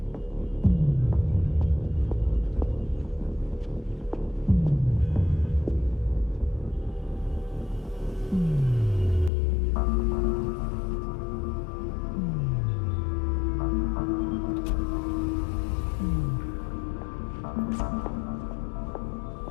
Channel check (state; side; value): drops out; right; at 9.3 s